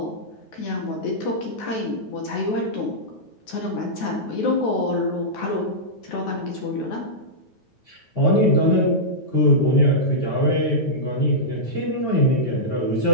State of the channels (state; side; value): late; right; 9.4 ms